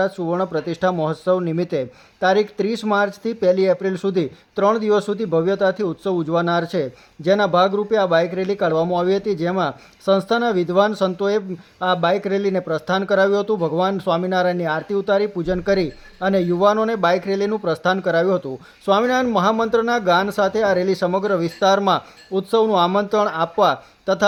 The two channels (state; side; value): identical; both; correlation 1.00